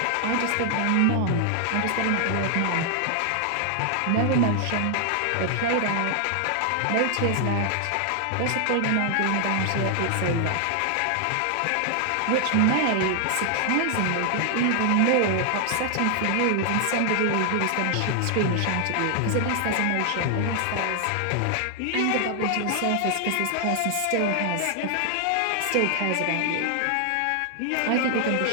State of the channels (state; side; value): different; both; correlation 0.00